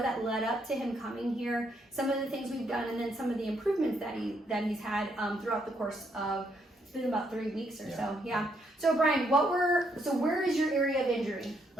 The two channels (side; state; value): both; normal; correlation 0.74